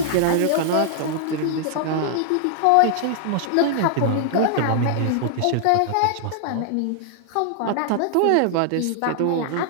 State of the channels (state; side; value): different; both; correlation -0.01